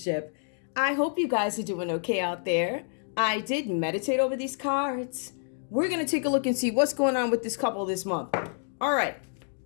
I hope you guys are doing okay out there. I did meditate over these cards. We're going to take a look and see what's going on with this couple this month. Alright,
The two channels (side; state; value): right; silent; digital silence